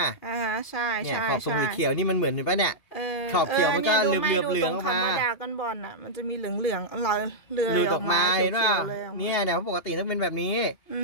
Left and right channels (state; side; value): late; right; 2.7 ms